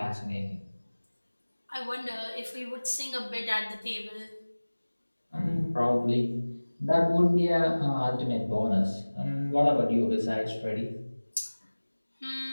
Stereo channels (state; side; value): inverted; both; correlation -1.00